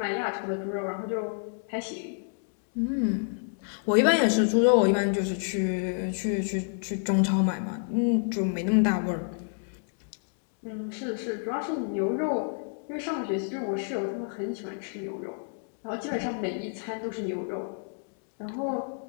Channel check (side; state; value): right; silent; 58 dB below the other